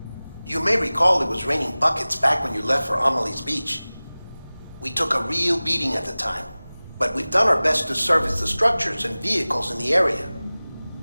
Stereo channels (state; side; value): inverted; both; correlation -0.99